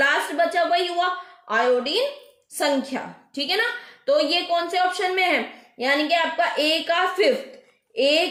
बचा वही हुआ आयोडीन संख्या। ठीक है ना, तो ये कौन से ऑप्शन में है, यानी कि आपका ए का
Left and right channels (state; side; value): identical; both; correlation 1.00